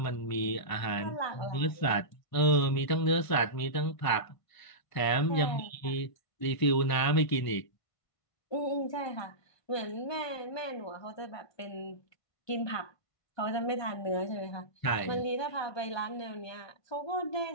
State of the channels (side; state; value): right; late; 1.5 ms